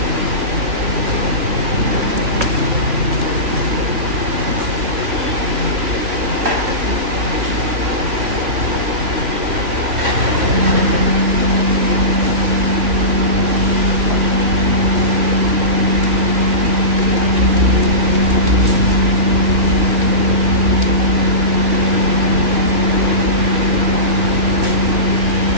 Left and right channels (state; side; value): late; left; 3.6 ms